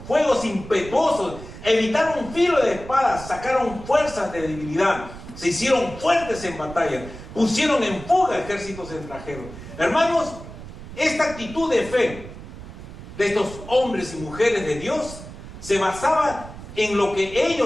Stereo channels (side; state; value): right; noise; rumble, 14 dB below the sound